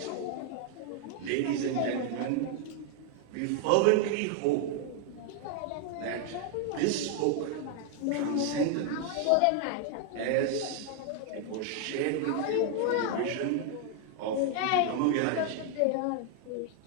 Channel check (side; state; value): both; different; correlation 0.00